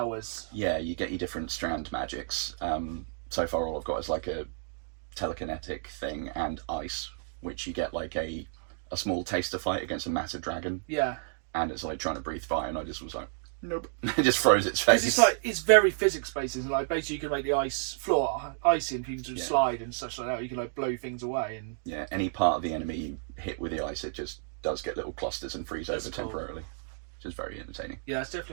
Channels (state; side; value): silent; left; digital silence